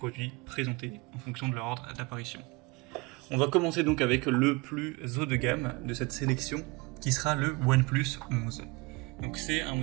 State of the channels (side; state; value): left; quieter; 25.3 dB